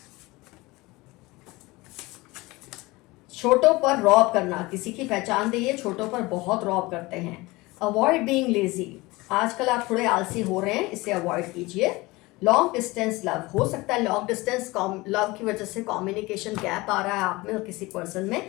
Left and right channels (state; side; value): quieter; right; 21.9 dB